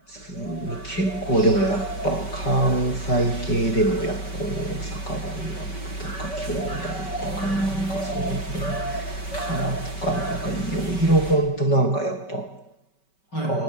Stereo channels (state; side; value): late; right; 5.2 ms